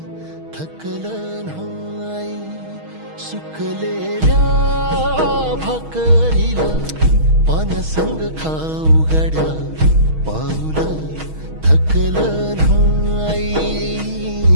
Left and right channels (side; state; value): left; late; 6.3 ms